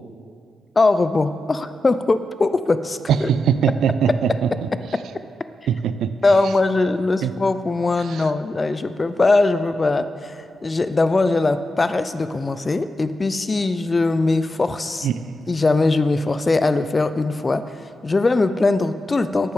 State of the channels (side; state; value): both; normal; correlation 0.89